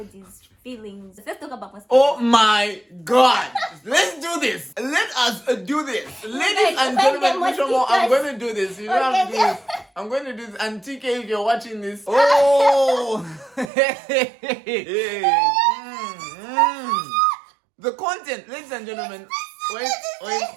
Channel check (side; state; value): left; drops out; at 13.7 s